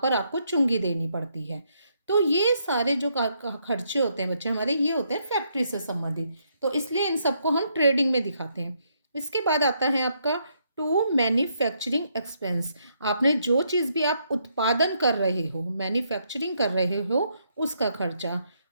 आपको चुंगी देनी पड़ती है। तो ये सारे जो खर्चे होते हैं बच्चे हमारे, ये होते हैं फैक्ट्री से संबंधित, तो इसलिए इन सबको हम ट्रेडिंग में दिखाते हैं। इसके बाद आता है आपका टू मैन्युफैक्चरिंग एक्सपेंस। आपने जो चीज़ भी आप उत्पादन कर रहे हो, मैन्युफैक्चरिंग कर रहे हो, उसका खर्चा।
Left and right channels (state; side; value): inverted; both; correlation -0.75